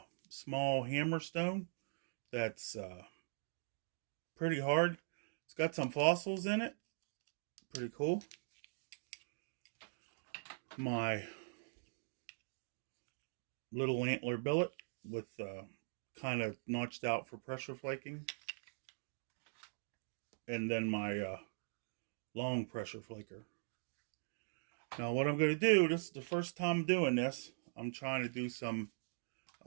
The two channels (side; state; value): left; silent; digital silence